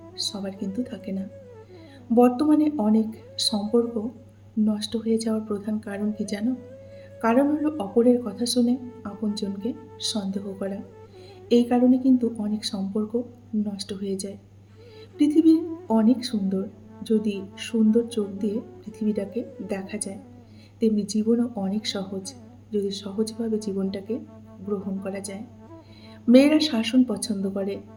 সবার কিন্তু থাকে না। বর্তমানে অনেক সম্পর্ক নষ্ট হয়ে যাওয়ার প্রধান কারণ কি জানো? কারণ হলো অপরের কথা শুনে আপনজনকে সন্দেহ করা। এই কারণে কিন্তু অনেক সম্পর্ক নষ্ট হয়ে যায়। পৃথিবী অনেক সুন্দর, যদি সুন্দর চোখ দিয়ে পৃথিবীটাকে দেখা যায়। তেমনি জীবনও অনেক সহজ, যদি সহজভাবে জীবনটাকে গ্রহণ করা যায়। মেয়েরা শাসন পছন্দ করে,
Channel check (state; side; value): identical; both; correlation 1.00